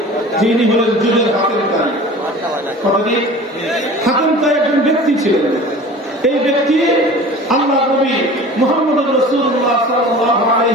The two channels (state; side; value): normal; both; correlation 0.40